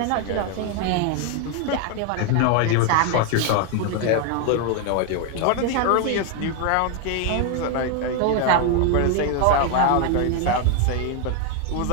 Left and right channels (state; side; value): different; both; correlation 0.01